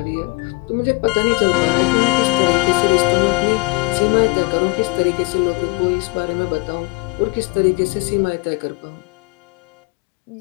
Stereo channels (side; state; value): right; quieter; 29.5 dB